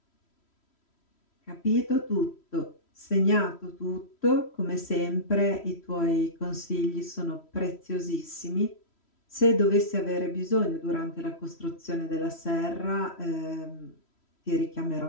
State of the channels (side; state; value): right; late; 3.1 ms